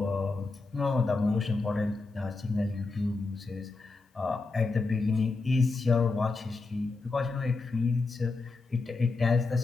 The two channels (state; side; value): quieter; right; 3.8 dB